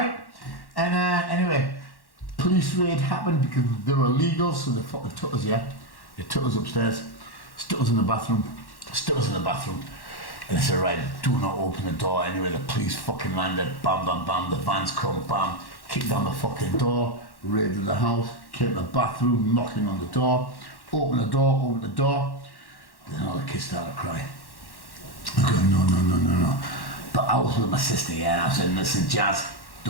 And anyway, police raid happened because they were illegal, so they fucking took us, yeah. They took us upstairs, stuck us in the bathroom. And they said, right, do not open the door. Anyway, the police fucking landed, bam, bam, bam, the vans come, bam, kicked down the fucking door, raided the house, came to the bathroom, knocking on the door, open the door. Then all the kids started crying. I go, no. But I was with my sister, yeah, I said, listen, Jazz,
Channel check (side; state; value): right; late; 1.1 ms